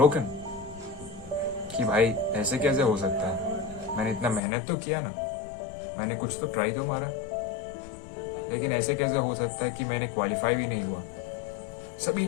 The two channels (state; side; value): drops out; right; at 4.4 s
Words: कि भाई ऐसे कैसे हो सकता है? मैंने इतना मेहनत तो किया ना, मैंने कुछ तो ट्राई तो मारा, लेकिन ऐसे कैसे हो सकता है कि मैंने क्वालिफाई भी नहीं हुआ? सभी